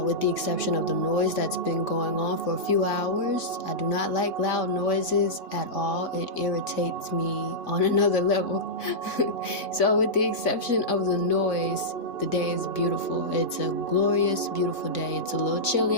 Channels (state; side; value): late; right; 3.5 ms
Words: the exception of the noise that's been going on for a few hours. I do not like loud noises at all. It irritates me on another level. So with the exception of the noise, the day is beautiful. It's a glorious, beautiful day. It's a little